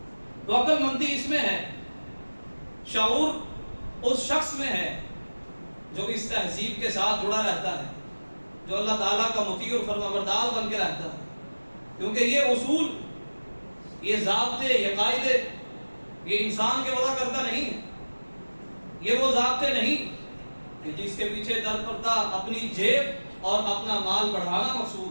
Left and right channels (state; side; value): inverted; both; correlation -1.00